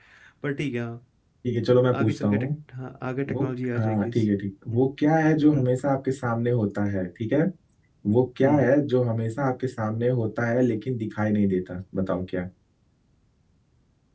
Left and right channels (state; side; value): identical; both; correlation 1.00